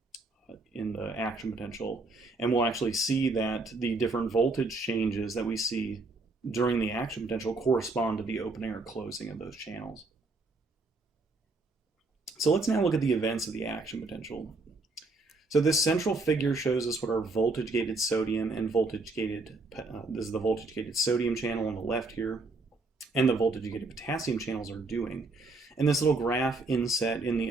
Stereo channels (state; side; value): quieter; left; 3.4 dB